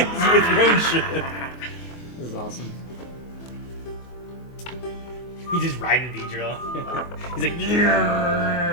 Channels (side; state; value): right; late; 24 ms